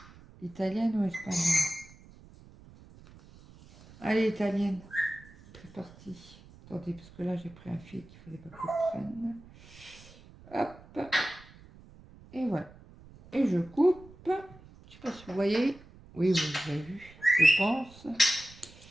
italienne ou espagnole? Allez, italienne. C'est parti. Attendez, parce que là, j'ai pris un fil qu'il ne fallait pas que je prenne. Hop. Et voilà. Et je coupe. Je ne sais pas si vous voyez. Oui, vous avez vu, je pense.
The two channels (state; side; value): noise; right; rumble, 22 dB below the sound